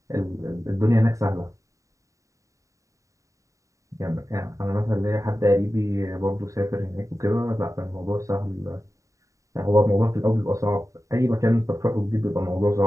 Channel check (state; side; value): late; left; 0.16 ms